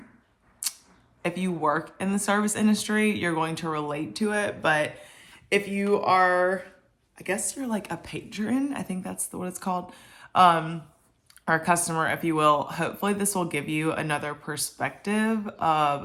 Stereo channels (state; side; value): identical; both; correlation 1.00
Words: if you work in the service industry, you're going to relate to it. But if you are, I guess you're like a patron, I think that's what it's called, or a customer, if you will, hopefully this will give you another perspective